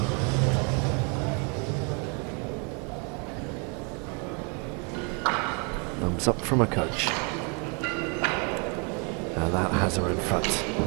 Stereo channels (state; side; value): quieter; left; 34.7 dB